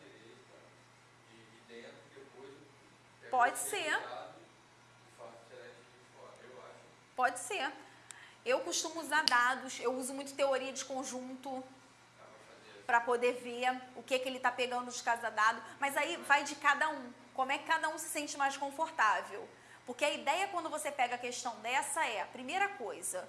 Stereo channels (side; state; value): both; identical; correlation 1.00